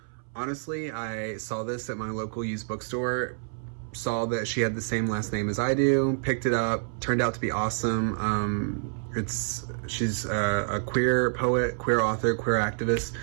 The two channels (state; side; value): silent; left; 59 dB below the other